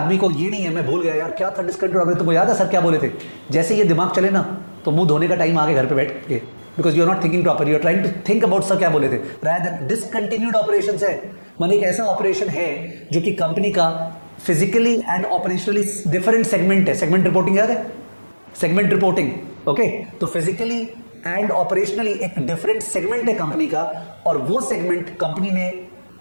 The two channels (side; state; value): both; inverted; correlation -1.00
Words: को ये नहीं है, मैं भूल गया यार क्या था डिसकंटिन्यूड ऑपरेशन, तुमको याद है सर क्या बोले थे? जैसे ये दिमाग चले ना तो मुंह धोने का टाइम आगे घर पे बैठ के, because you are not thinking proper, you are trying to think about sir क्या बोले थे। रादर डिसकंटिन्यूड ऑपरेशंस है, माने एक ऐसा ऑपरेशन है जो कि कंपनी का physically and operationally different segment है। सेगमेंट रिपोर्टिंग याद है? Segment reporting, okay. तो फिजिकली एंड ऑपरेशनली एक डिफरेंट सेगमेंट है कंपनी का, और वो सेगमेंट कंपनी ने